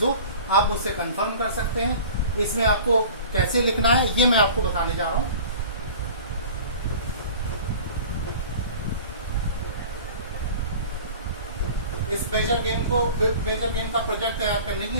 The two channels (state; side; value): inverted; both; correlation -0.42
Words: हो आप मुझसे कंफर्म कर सकते हैं। इसमें आपको कैसे लिखना है ये मैं आपको बताने जा रहा हूँ। इस मेजर गेम का प्रोजेक्ट तैयार करने के